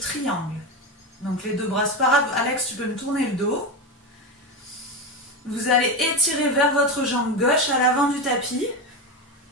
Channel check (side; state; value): both; normal; correlation 0.17